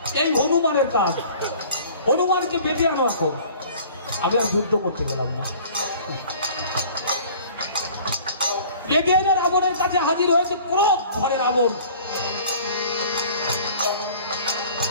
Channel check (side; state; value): both; inverted; correlation -0.48